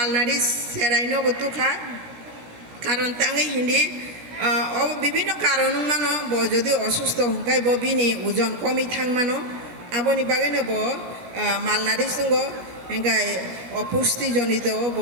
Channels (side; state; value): left; late; 17 ms